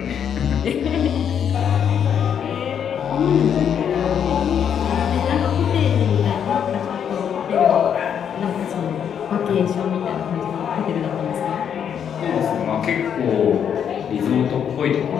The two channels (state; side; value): quieter; right; 8.3 dB